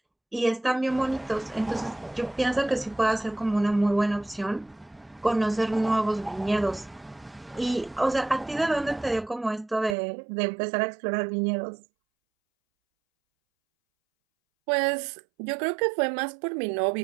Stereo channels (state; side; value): drops out; left; at 10.0 s